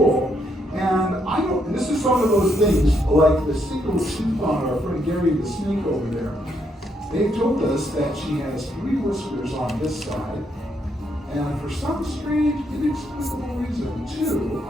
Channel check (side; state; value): both; normal; correlation 0.75